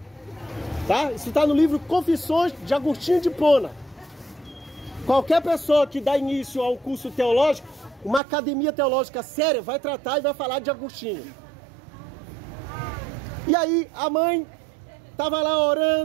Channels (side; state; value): left; drops out; at 8.2 s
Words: Tá? Isso está no livro Confissões de Agostinho de Hipona. Qualquer pessoa que dá início a um curso teológico, uma academia teológica séria, vai tratar e vai falar de Agostinho. E aí a mãe estava lá